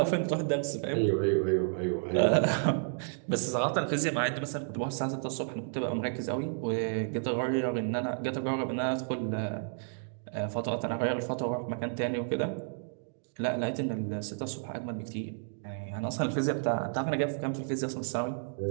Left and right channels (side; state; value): left; silent; digital silence